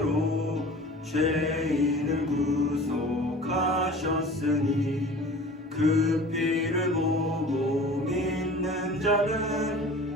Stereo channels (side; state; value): both; normal; correlation 0.42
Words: 죄인을 구속하셨으니 그 피를 보고 믿는